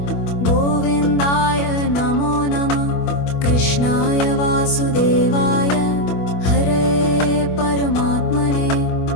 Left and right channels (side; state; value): right; late; 25 ms